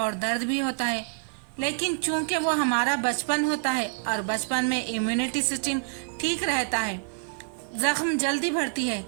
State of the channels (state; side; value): silent; left; digital silence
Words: दर्द भी होता है। लेकिन चूंकि वो हमारा बचपन होता है और बचपन में इम्यूनिटी सिस्टम ठीक रहता है, जख्म जल्दी भरती है,